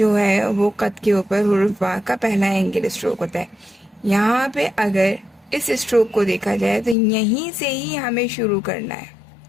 ہے وہ قط کے اوپر حروف با کا پہلا اینگل اسٹروک ہوتا ہے۔ یہاں پہ اگر اس اسٹروک کو دیکھا جائے تو یہیں سے ہی ہمیں شروع کرنا ہے۔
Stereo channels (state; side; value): drops out; right; at 7.0 s